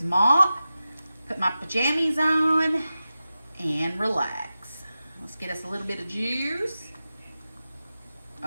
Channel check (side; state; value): both; inverted; correlation -0.93